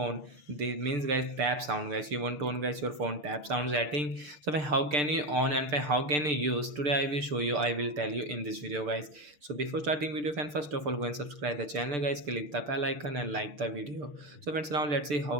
This means guys tap sound guys. You want to on guys your phone tap sound setting. So how can you on and how can you use? Today I will show you. I will tell you in this video guys. So before starting video friend, first of all go and subscribe the channel guys. Click the bell icon and like the video. So friends, now let's see how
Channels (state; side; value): late; left; 6.8 ms